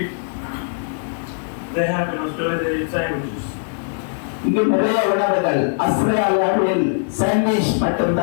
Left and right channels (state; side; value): silent; right; digital silence